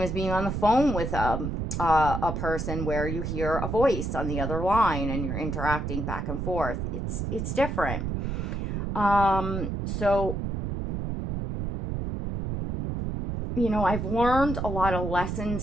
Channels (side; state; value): right; noise; rumble, 3 dB below the sound